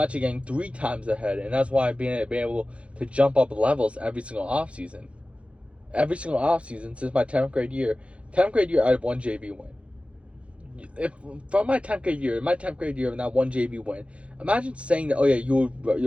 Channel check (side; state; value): left; late; 0.061 ms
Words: actually getting 3 times ahead, and that's why I've been able to jump up levels every single off season. Every single off season since my 10th grade year. 10th grade year, I had 1 JV win. From my 10th grade year, and that 1 JV win, imagine saying that, oh yeah, you